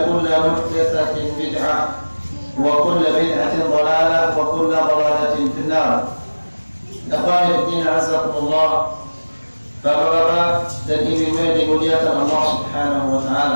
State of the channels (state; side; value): inverted; both; correlation -1.00